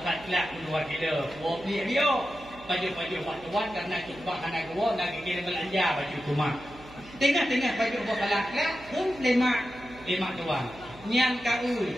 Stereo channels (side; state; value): right; noise; hum, 19 dB below the sound